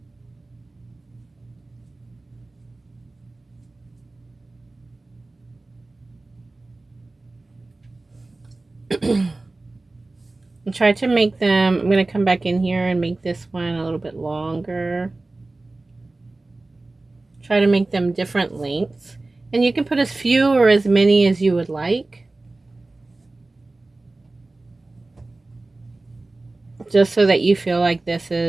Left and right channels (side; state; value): left; quieter; 3.1 dB